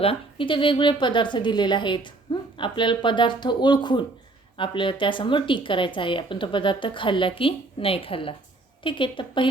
इथे वेगवेगळे पदार्थ दिलेले आहेत. आपल्याला पदार्थ ओळखून आपल्याला त्यासमोर टिक करायचं आहे, आपण तो पदार्थ खाल्ला की नाही खाल्ला. ठीक आहे, तर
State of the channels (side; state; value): left; quieter; 3.1 dB